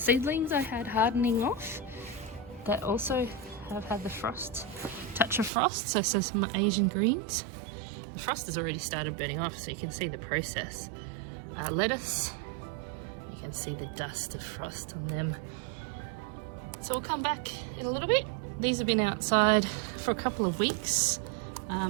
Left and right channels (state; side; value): drops out; left; at 5.5 s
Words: I had hardening off that also have had the touch of frost. So some Asian greens. The frost has already started burning off, so you can see the process. Lettuce, you can see the dust of frost on them. So we'll come back in a little bit. These have been outside for a couple of weeks.